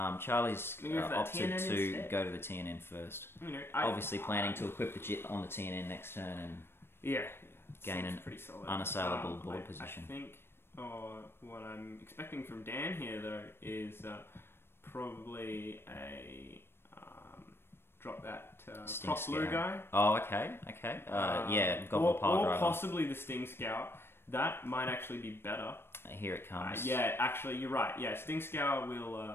Charlie's opted to go to the TNN first. Obviously planning to equip the Jit on the TNN next turn. And yeah. gain an pretty solid. unassailable board position. I think, what I'm expecting from Dan here though is probably a drop that Sting Prop Blue Scout. guy. Oh, okay. Yeah, Goblin Pile Driver. Or possibly the Sting Scout. That might actually be better. Here it comes. Yeah, actually, you're right. Yeah, Sting Scout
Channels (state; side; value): late; right; 0.11 ms